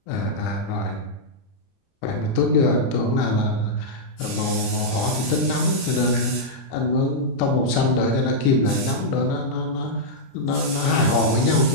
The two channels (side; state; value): right; late; 30 ms